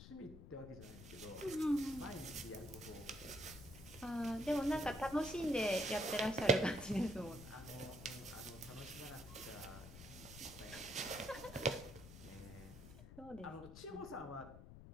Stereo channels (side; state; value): left; noise; rumble, 14 dB below the sound